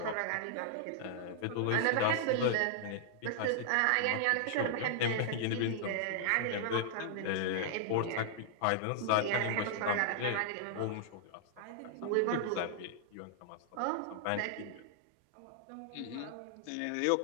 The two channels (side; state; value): both; different; correlation -0.01